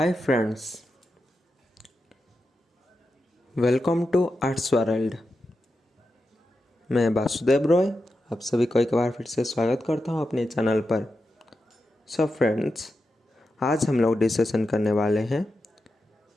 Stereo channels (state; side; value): normal; both; correlation 0.89